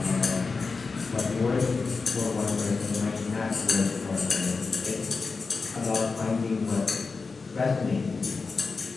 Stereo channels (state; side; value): quieter; right; 4.4 dB